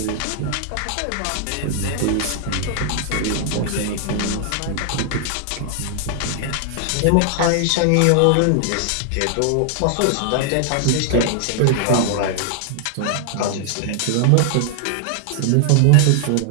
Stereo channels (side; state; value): both; different; correlation 0.00